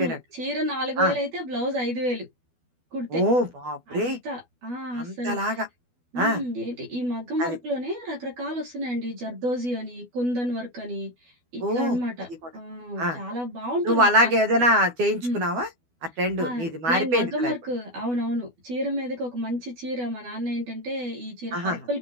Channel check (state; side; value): late; left; 12 ms